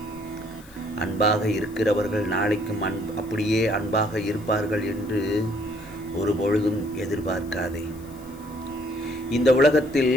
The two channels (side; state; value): left; noise; hiss, 24 dB below the sound